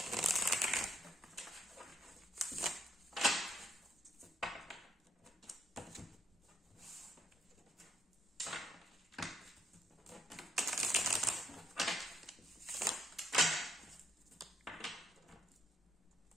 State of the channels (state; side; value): normal; both; correlation 0.75